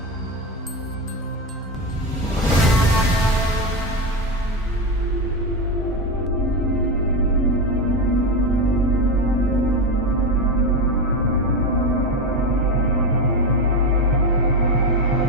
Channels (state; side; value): normal; both; correlation 0.14